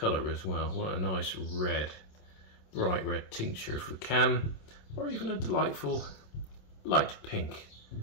as well. What a nice red, bright red tincture if we can, or even a delightful light pink.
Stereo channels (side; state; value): right; late; 27 ms